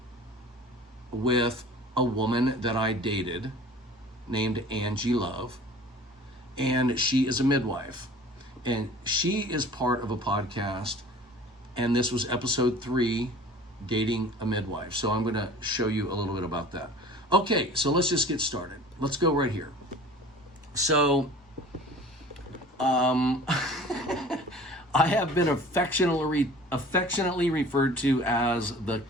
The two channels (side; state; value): both; normal; correlation 0.45